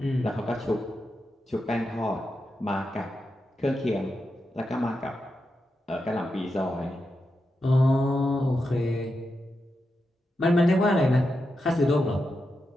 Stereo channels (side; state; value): both; normal; correlation 0.87